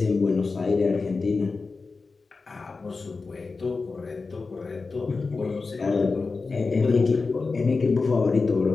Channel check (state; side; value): quieter; right; 4.2 dB